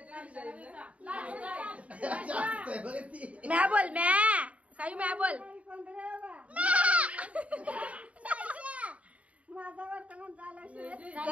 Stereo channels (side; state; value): left; late; 0.066 ms